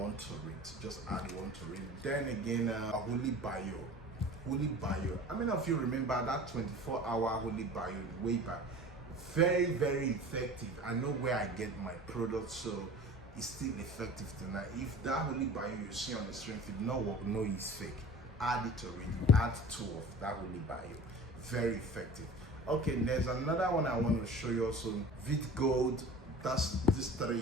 to it, just add 1 to it. Then again, Holy Bio. I mean, if you remember that 24-hour Holy Bio way back, very, very effective. I know where I get my products, so it's still effective tonight. If that Holy Bio you see on the screen, if it not work, no, it's fake. Add it to it, add 2 of that Holy Bio, very effective. Okay, there's another one I want to show you also, Vit Gold. That's this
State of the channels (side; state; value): both; normal; correlation 0.40